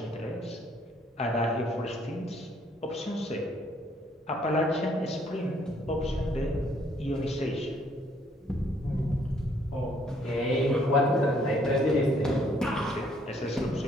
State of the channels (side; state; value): both; normal; correlation 0.65